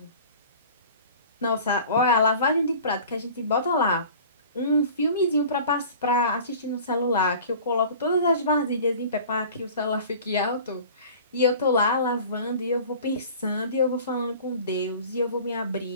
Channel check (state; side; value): inverted; both; correlation -0.43